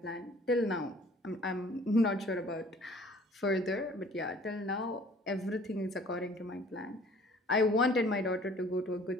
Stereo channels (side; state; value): both; normal; correlation 0.53